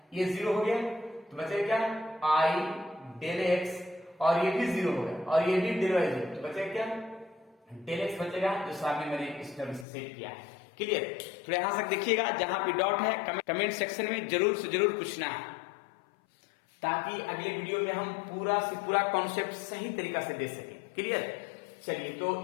ये 0 हो गया, तो बचेगा क्या आई डेल एक्स, और ये भी 0 हो गया और ये भी डेल वाई 0, तो बचेगा क्या डेल एक्स बचेगा, जो सामने मैंने इस टर्म से सेट किया है। क्लियर। तो यहां तक देखिएगा, जहां पे डॉट है कमेंट सेक्शन में जरूर से जरूर पूछना है, ताकि अगले वीडियो में हम पूरा से पूरा कॉन्सेप्ट सही तरीका से दे सकें। क्लियर। चलिए, तो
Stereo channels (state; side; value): drops out; right; at 9.9 s